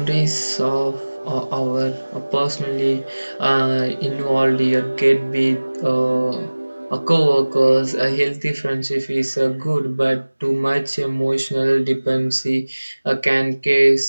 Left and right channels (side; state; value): both; inverted; correlation -1.00